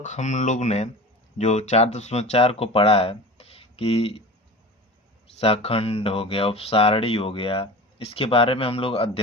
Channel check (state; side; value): normal; both; correlation 0.35